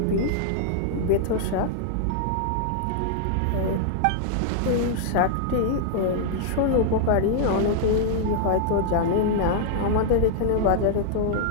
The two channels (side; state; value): both; different; correlation -0.01